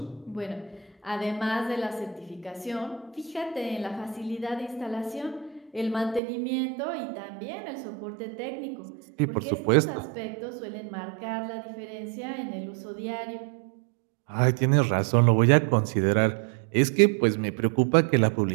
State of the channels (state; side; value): drops out; left; at 6.2 s